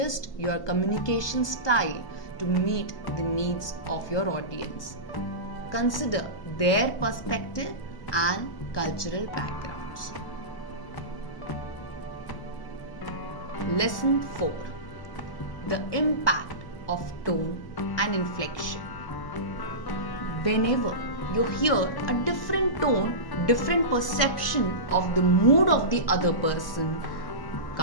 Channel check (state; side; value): late; right; 1.0 ms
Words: your communication style to meet the needs of your audience. Consider their perspective and cultural backgrounds. Lesson 4. The impact of tone and inflection. Whenever you hear a different tone, different perception of the mood of the other person